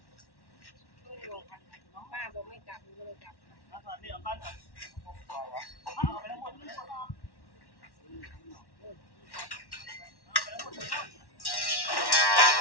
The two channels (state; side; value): late; right; 1.1 ms